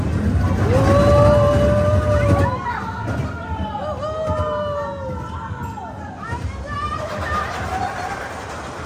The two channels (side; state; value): both; identical; correlation 1.00